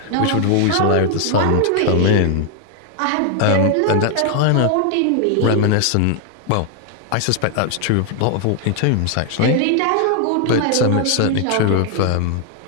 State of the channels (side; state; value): both; different; correlation 0.00